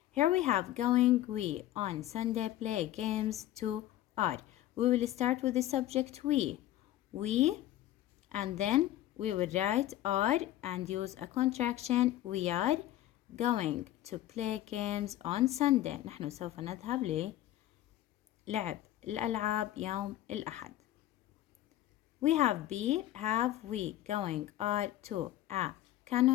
Here we have going, we, on Sunday, play games, to, are. We will start with the subject we, and then we will write are and use a contraction. We are going to play games on Sunday. نحن سوف نذهب للعب الألعاب يوم الأحد. We have be, have, we, going, are, to, a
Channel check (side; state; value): right; quieter; 13.9 dB